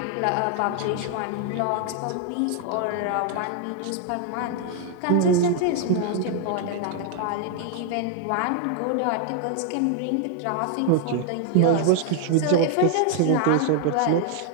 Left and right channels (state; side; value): different; both; correlation 0.00